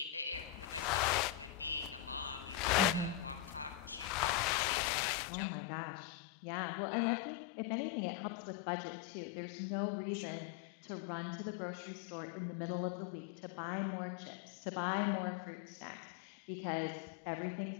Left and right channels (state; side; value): drops out; right; at 4.5 s